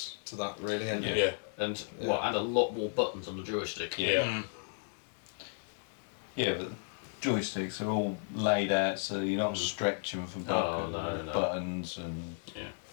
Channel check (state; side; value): silent; right; digital silence